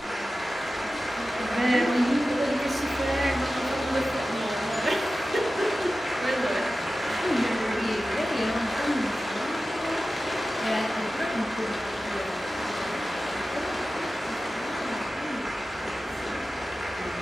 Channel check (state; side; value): normal; both; correlation 0.94